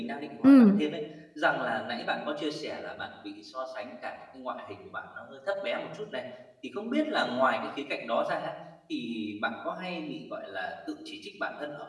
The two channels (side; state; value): both; identical; correlation 1.00